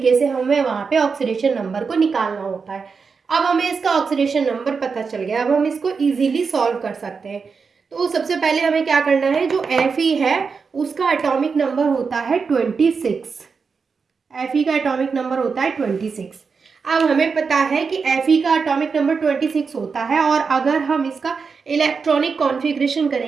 से हमें वहाँ पे ऑक्सीडेशन नंबर को निकालना होता है। अब हमें इसका ऑक्सीडेशन नंबर पता चल गया, अब हम इसको इजीली सॉल्व कर सकते हैं। तो सबसे पहले हमें क्या करना है, जो Fe है उसका एटॉमिक नंबर होता है 26। Fe का एटॉमिक नंबर होता है 26। अब हमें पता है कि Fe का एटॉमिक नंबर 26 होता है, और अगर हम इसका इलेक्ट्रॉनिक कॉन्फ़िगरेशन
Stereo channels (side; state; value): left; quieter; 5.3 dB